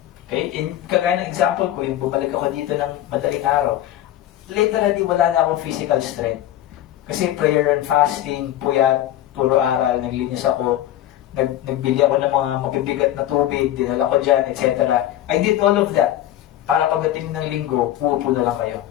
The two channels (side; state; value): right; quieter; 13.2 dB